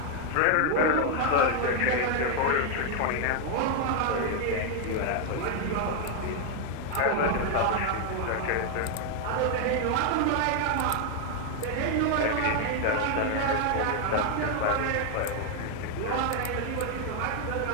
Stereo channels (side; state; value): both; different; correlation 0.01